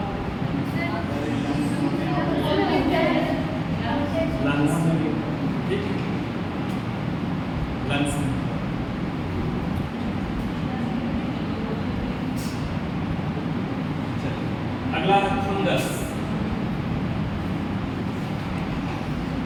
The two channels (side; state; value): both; identical; correlation 1.00